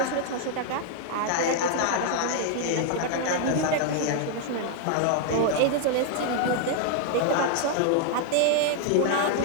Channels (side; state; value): both; different; correlation 0.00